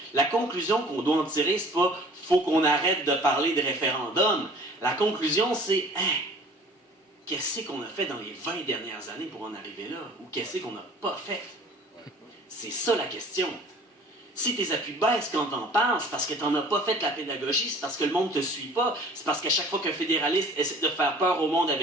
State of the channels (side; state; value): both; normal; correlation 0.49